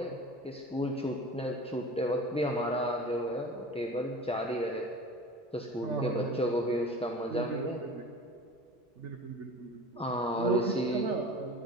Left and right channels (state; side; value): normal; both; correlation 0.38